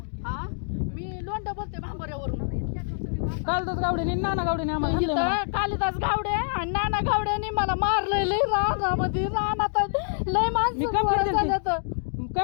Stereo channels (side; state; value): right; silent; digital silence